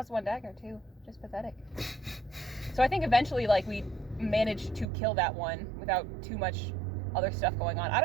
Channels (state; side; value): drops out; left; at 4.9 s